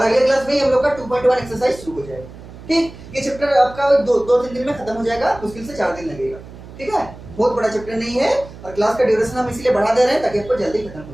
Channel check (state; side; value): noise; right; hum, 17 dB below the sound